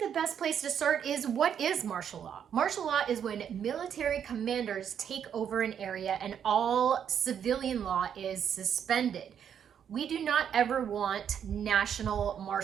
the best place to start is, what is martial law? Martial law is when military commanders take over an area and all civilian law is suspended. We do not ever want national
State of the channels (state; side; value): quieter; left; 8.5 dB